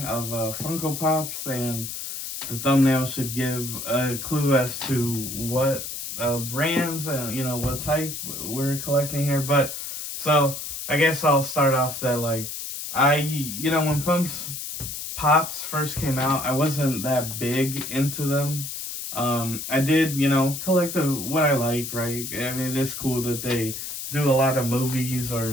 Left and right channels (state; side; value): noise; left; hiss, 7 dB below the sound